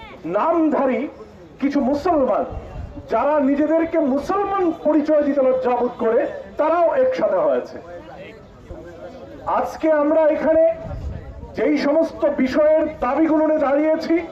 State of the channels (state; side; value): identical; both; correlation 1.00